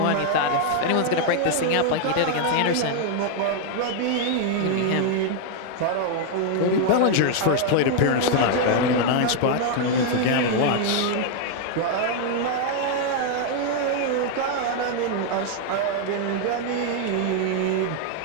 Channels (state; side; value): different; both; correlation 0.00